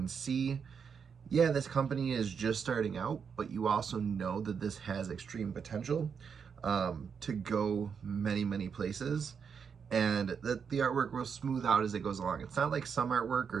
see, yeah, this company is just starting out, but you also know that this has extreme potential to go many places, and that the artwork will smooth out as it goes along. It's not like some artwork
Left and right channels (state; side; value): quieter; left; 6.6 dB